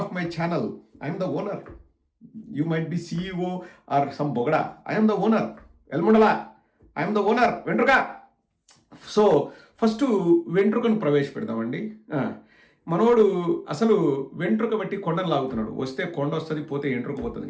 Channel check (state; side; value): identical; both; correlation 1.00